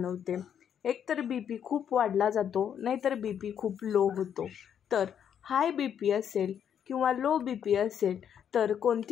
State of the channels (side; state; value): right; quieter; 8.7 dB